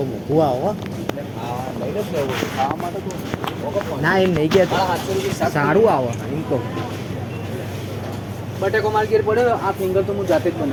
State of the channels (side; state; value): both; identical; correlation 1.00